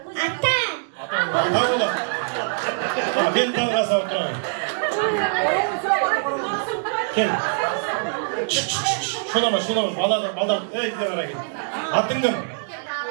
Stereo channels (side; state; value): left; silent; digital silence